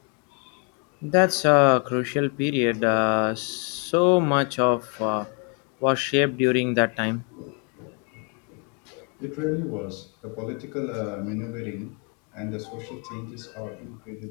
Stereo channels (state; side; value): quieter; right; 36.7 dB